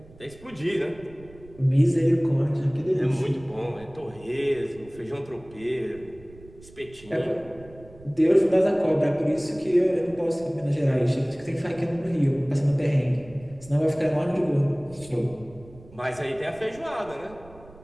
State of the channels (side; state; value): right; noise; rumble, 22 dB below the sound